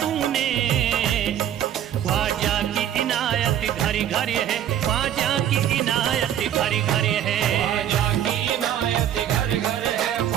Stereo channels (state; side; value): quieter; left; 10.6 dB